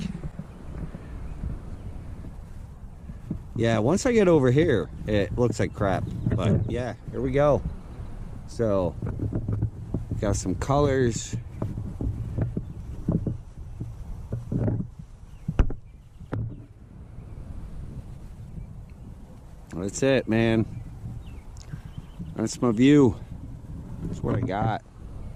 Yeah, once I get over here, it looks like crap. But yeah, here we go. So, got some colors. That's it, man. That's my view. That's what I got.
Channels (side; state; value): both; identical; correlation 1.00